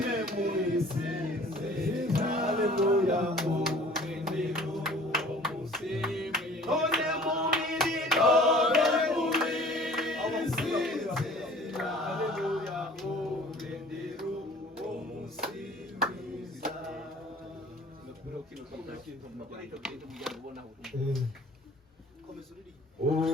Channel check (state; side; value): normal; both; correlation 0.49